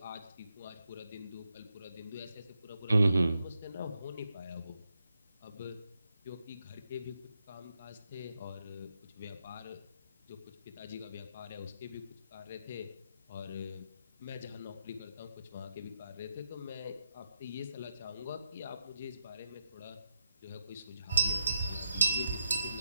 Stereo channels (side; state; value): both; inverted; correlation -0.83